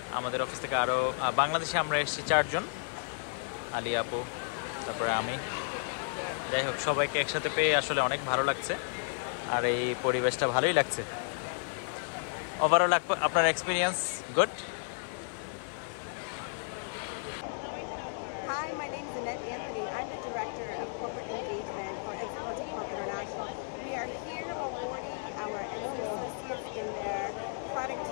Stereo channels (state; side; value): silent; right; 56 dB below the other